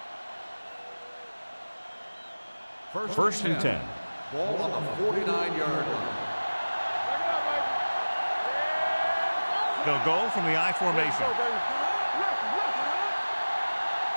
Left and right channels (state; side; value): inverted; both; correlation -1.00